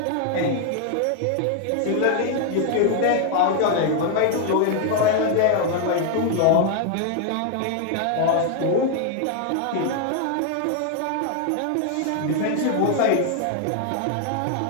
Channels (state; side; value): different; both; correlation 0.00